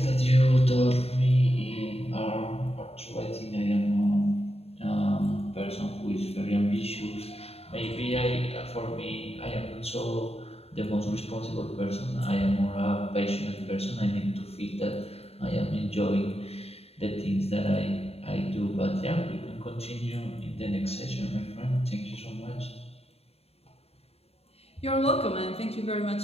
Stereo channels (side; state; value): right; late; 0.29 ms